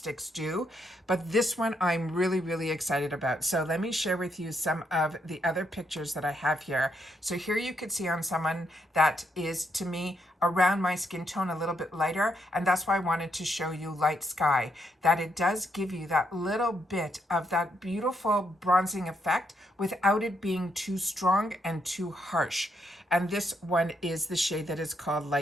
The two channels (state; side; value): normal; both; correlation 0.77